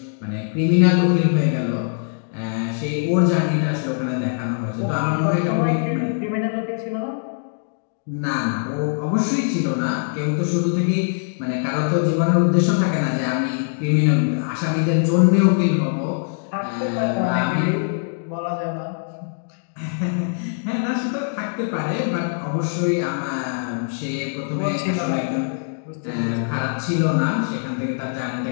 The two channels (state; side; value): silent; right; digital silence